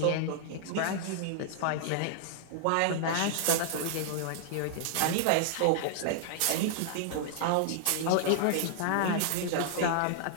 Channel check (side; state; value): both; different; correlation -0.01